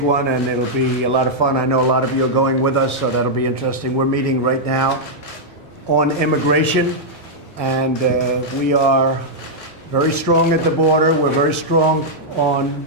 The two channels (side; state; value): both; normal; correlation -0.06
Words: one, and it'll be a lot of fun. I know a lot of you are going with us, so that'll be interesting. We're meeting right now on immigration, and we are very strong at the border. We're very strong on